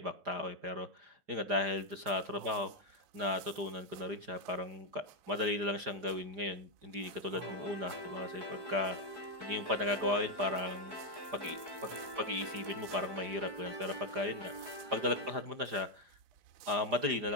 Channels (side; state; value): left; late; 5.0 ms